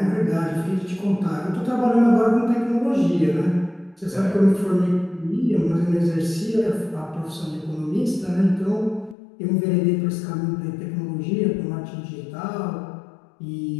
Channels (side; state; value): right; drops out; at 9.2 s